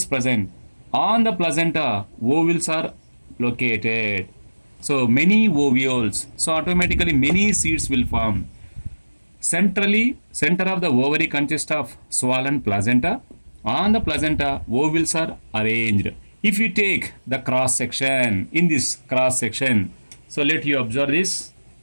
present. On the placenta, ovules are located. So many ovules. So automatically many seeds will form. Centrally, center of the ovary consists of swollen placenta. On the placenta, ovules are arranged. If you take the cross section, in this cross section, so let you observe this.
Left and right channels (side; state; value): both; inverted; correlation -1.00